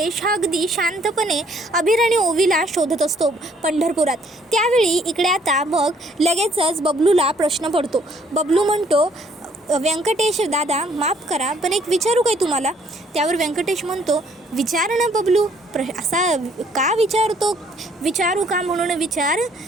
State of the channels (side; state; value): both; normal; correlation 0.63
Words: हा अगदी शांतपणे अभिर आणि ओवीला शोधत असतो पंढरपुरात। त्यावेळी इकडे आता मग लगेचच बबलूला प्रश्न पडतो। बबलू म्हणतो, व्यंकटेश दादा माफ करा पण एक विचारू काय तुम्हाला? त्यावर व्यंकटेश म्हणतो, विचार ना बबलू, असा का विचारतो? विचारू का म्हणून विचार।